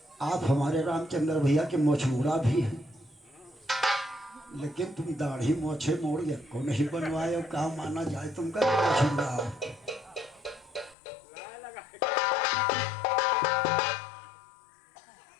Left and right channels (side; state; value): right; drops out; at 11.0 s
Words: आप हमारे रामचंद्र भैया के मोछमुड़ा भी हैं, लेकिन तुम दाढ़ी मोछे मोड़ को नहीं बनवाए हो, कहा माना जाए तुमका मोछमुड़ा हो।